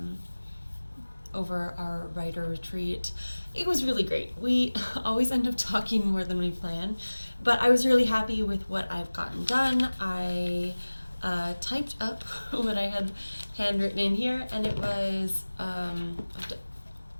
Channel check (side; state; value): both; inverted; correlation -1.00